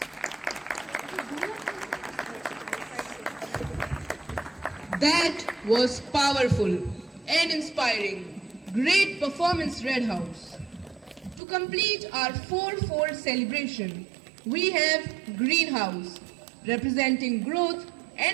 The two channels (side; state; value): left; drops out; at 11.4 s